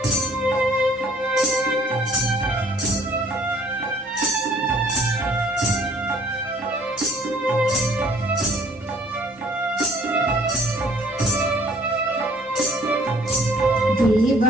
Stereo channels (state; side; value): normal; both; correlation 0.57